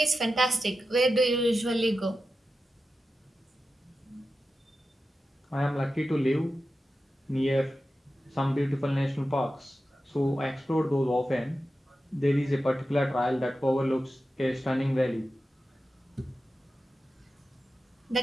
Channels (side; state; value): both; normal; correlation 0.92